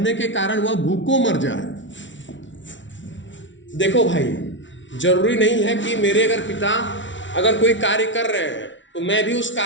के कारण वह भूखों मर जाए। देखो भाई, जरूरी नहीं है कि मेरे अगर पिता अगर कोई कार्य कर रहे हैं तो मैं भी उस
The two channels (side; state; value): right; late; 0.55 ms